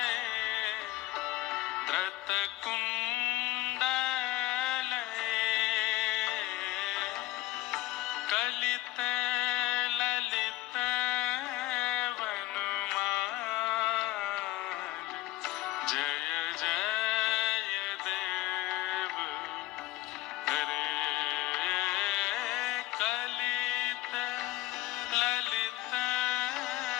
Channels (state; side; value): quieter; right; 17.2 dB